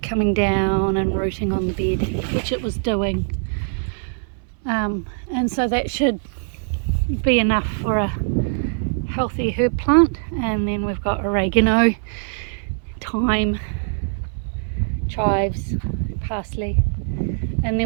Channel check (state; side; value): silent; left; 61 dB below the other